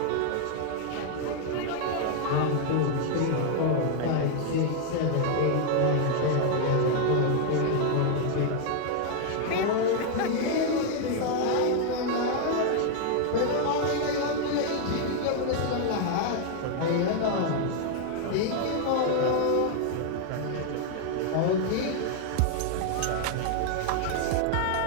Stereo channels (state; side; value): different; both; correlation 0.00